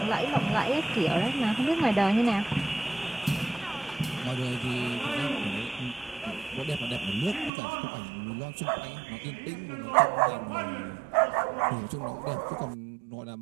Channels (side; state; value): left; drops out; at 7.5 s